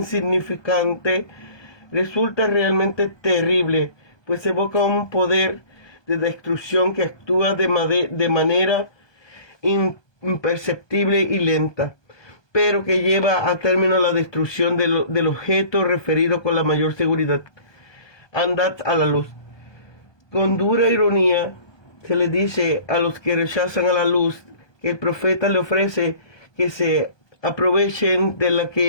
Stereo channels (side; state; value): right; late; 1.2 ms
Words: resulta realmente terrible, pues evoca un poder de destrucción que actúa de manera imperceptible y lenta, pero que lleva a término la destrucción del objeto referido con la mayor seguridad. Andad a la luz. Con dura ironía se le dice a los que rechazan a la luz que el profeta le ofrece que se aprovechen de la